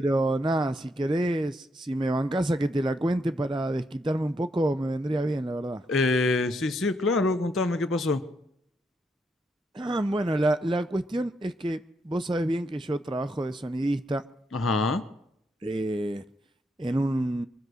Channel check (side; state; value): both; normal; correlation 0.78